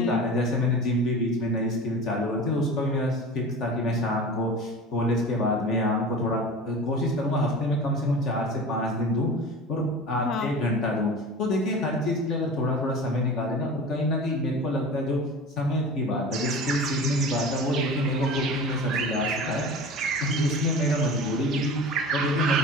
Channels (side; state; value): both; normal; correlation 0.35